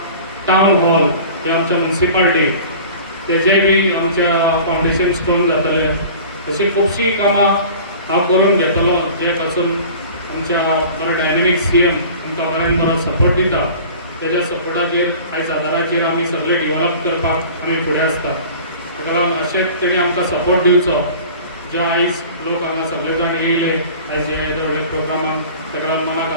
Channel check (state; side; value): inverted; both; correlation -0.42